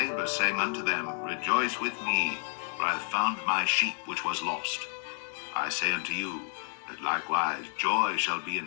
saying unto them, Rejoice with me, for I have found my sheep which was lost. I say unto you, that likewise joy shall be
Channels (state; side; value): silent; right; 55 dB below the other